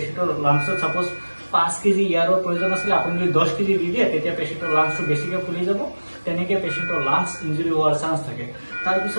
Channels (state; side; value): inverted; both; correlation -1.00